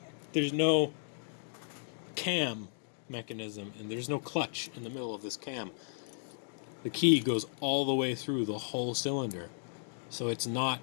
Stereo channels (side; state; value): right; silent; digital silence